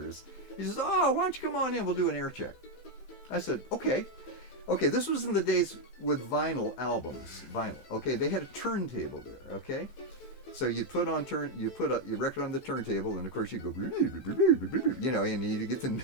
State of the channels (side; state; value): right; late; 15 ms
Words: He says, oh, why don't you come on in, we'll do an air check. I said, okay, this was in the days with vinyl albums, okay, they had a turntable there, okay? So you put your record on the turntable, and of course you go, and you get